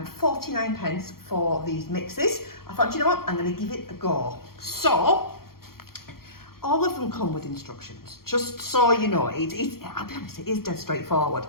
49 pence for these mixes. I thought, you know what, I'm going to give it a go. So all of them come with instructions, just so you know. I'll be honest, it is dead straightforward.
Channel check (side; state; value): right; late; 0.93 ms